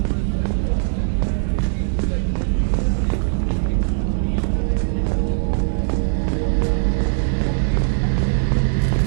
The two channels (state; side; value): silent; left; digital silence